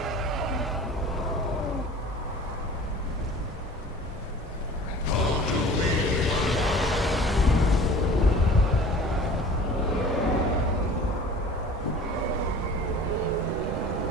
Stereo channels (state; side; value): normal; both; correlation 0.43